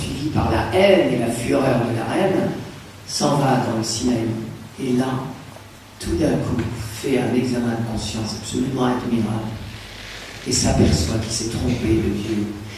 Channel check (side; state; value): both; identical; correlation 1.00